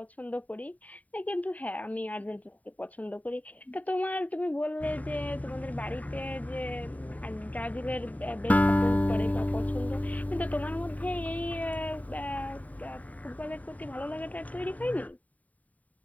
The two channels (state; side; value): late; right; 0.072 ms